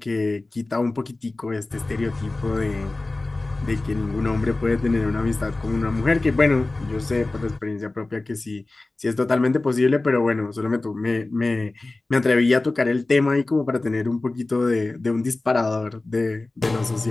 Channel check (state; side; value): quieter; right; 3.1 dB